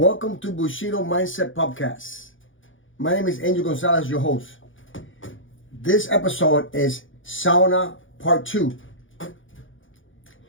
to Bushido Mindset Podcast. My name is Angel Gonzalez, your host. This episode is Sauna Part 2.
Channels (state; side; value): late; right; 0.57 ms